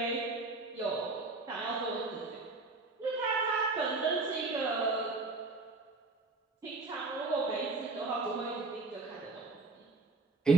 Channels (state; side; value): quieter; left; 3.6 dB